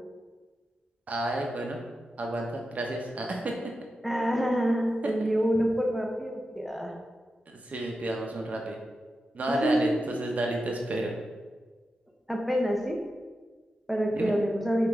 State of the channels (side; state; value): both; normal; correlation 0.90